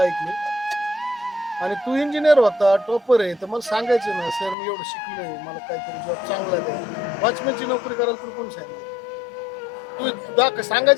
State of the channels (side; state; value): right; drops out; at 4.5 s